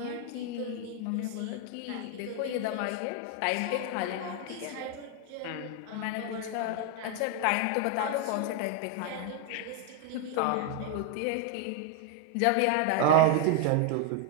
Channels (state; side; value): different; both; correlation 0.00